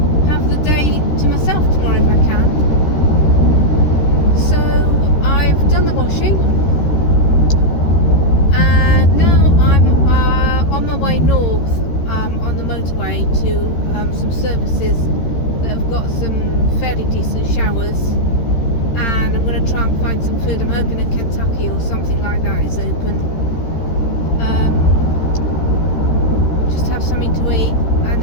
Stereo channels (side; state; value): right; late; 13 ms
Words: have the day to myself tomorrow if I can. So I've done the washing, and now I'm on my way north on the motorway to some services that have got some fairly decent showers, and I'm going to try and find some food. I'm hoping that Kentucky or something like that is open. Just have something to eat, and